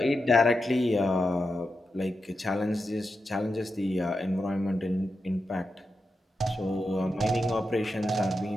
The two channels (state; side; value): normal; both; correlation 0.88